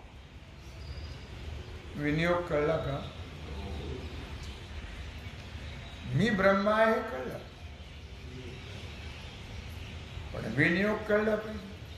विनियोग कळला का? मी ब्रह्म आहे कळलं, पण विनियोग कळला पाहिजे.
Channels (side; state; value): both; identical; correlation 1.00